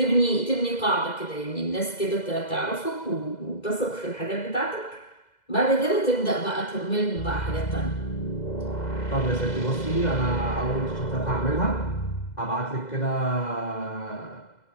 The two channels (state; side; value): late; right; 2.0 ms